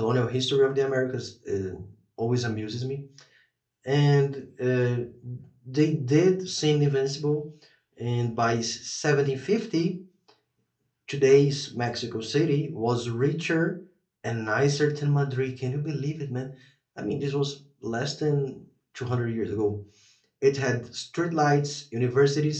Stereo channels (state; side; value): identical; both; correlation 1.00